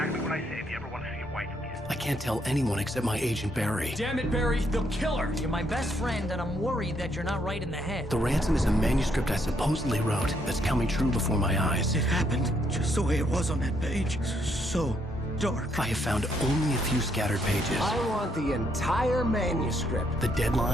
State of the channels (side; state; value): both; normal; correlation 0.73